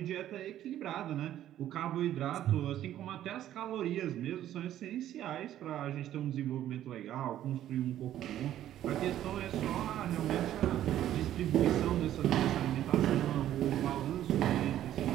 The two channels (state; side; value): quieter; left; 12.2 dB